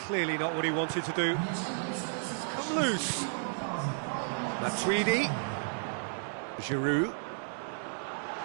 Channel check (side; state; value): left; silent; digital silence